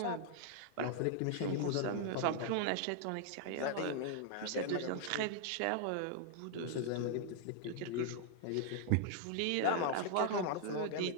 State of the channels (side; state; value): both; different; correlation 0.00